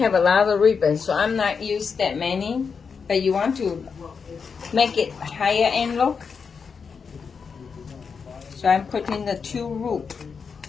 a lot of ribbons, so I'm not used that many. But you want to make it higher end look, so I'm putting the 2 loop.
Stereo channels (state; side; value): quieter; right; 5.7 dB